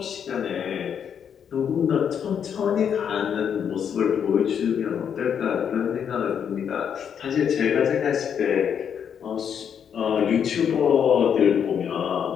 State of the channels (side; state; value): right; quieter; 8.0 dB